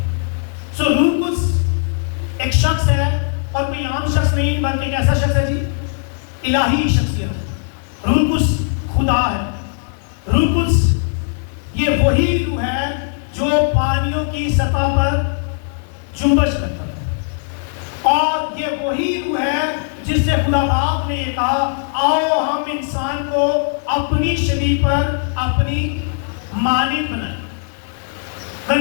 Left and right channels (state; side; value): silent; right; 64 dB below the other